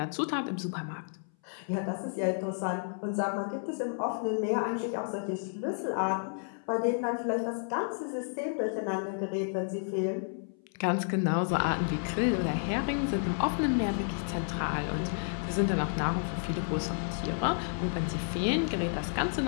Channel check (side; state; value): right; silent; 57 dB below the other